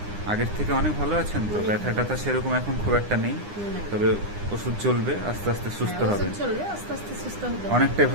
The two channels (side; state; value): left; late; 9.8 ms